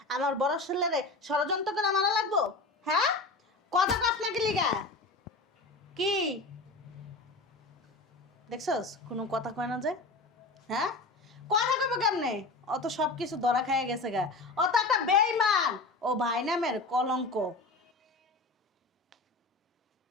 আমার বড় ছেলেরে ষড়যন্ত্র করে মারা লাগবো? হ্যাঁ, কত গাছ না লিগা কি দেখছস? কোনো কথা কয় না যে? হ্যাঁ, কথা কবে কেমনে? অত সব কিছু ধরা খাইয়া গেছে গা। ও তো একটা বেঈমান, ও ভাই নামের কলঙ্ক।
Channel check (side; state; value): right; quieter; 3.3 dB